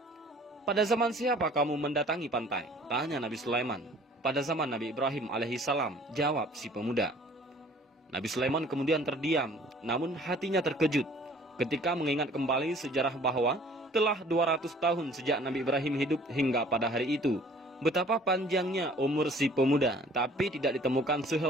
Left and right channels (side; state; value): both; normal; correlation 0.53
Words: 'Pada zaman siapa kamu mendatangi pantai?' tanya Nabi Sulaiman. 'Pada zaman Nabi Ibrahim alaihissalam,' jawab si pemuda. Nabi Sulaiman kemudian terdiam, namun hatinya terkejut ketika mengingat kembali sejarah bahwa telah 200 tahun sejak Nabi Ibrahim hidup hingga pada hari itu. Betapa panjangnya umur si pemuda, tapi tidak ditemukan